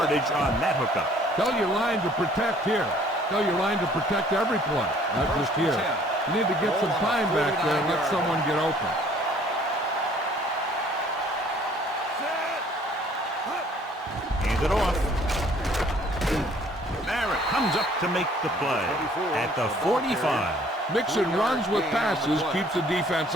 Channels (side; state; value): both; normal; correlation 0.57